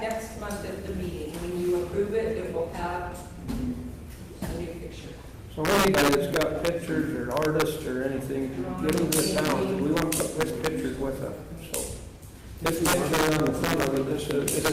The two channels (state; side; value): identical; both; correlation 1.00